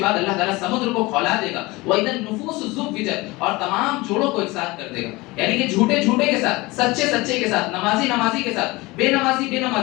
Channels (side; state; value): right; quieter; 22.2 dB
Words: بعد اللہ تعالیٰ سمندر کو کھولا دے گا. وَإِذَا النُّفُوسُ زُوِّجَتْ, اور تمام جوڑوں کو ایک ساتھ کر دے گا. یعنی کہ جھوٹے جھوٹے کے ساتھ, سچے سچے کے ساتھ, نمازی نمازی کے ساتھ, بے نمازی بے